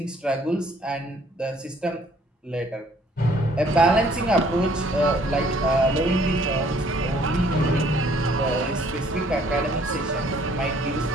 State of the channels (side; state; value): both; normal; correlation 0.61